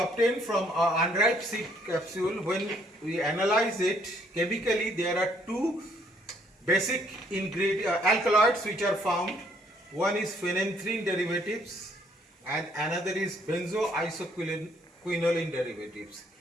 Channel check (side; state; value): both; normal; correlation 0.66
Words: from unripe seed capsule, when we analyze it chemically, there are two basic alkaloids which are found. One is phenanthrene derivatives and another is benzoisoquinoline derivatives.